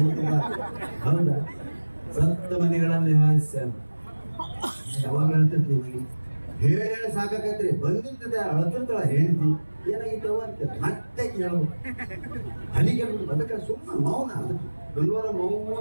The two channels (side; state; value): both; inverted; correlation -1.00